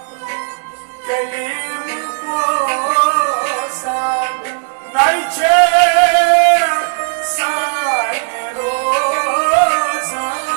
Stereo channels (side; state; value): left; silent; digital silence